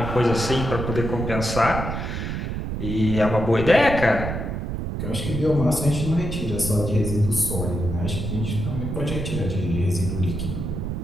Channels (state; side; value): noise; right; rumble, 4 dB below the sound